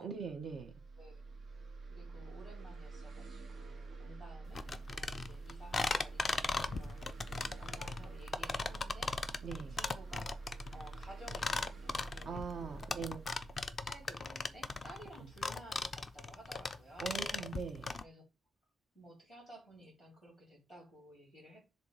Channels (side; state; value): both; normal; correlation 0.84